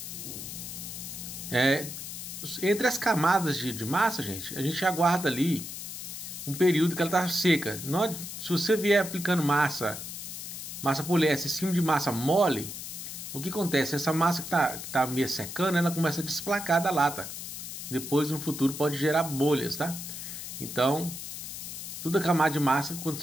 Entre as camadas de massa, gente, a gente aguarda ali um período que ela tá seca. Se você vier aplicando massa poliéster em cima de massa mole, o que acontece? Essa massa que tá meio secando, ela começa a desplacar da lata. Depois, no futuro, pode gerar bolhas, tá? Então, toda camada de massa, quando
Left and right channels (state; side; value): noise; left; hiss, 8 dB below the sound